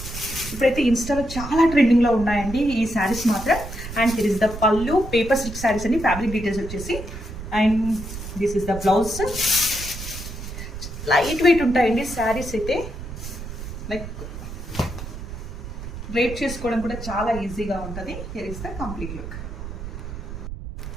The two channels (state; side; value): noise; right; rumble, 9 dB below the sound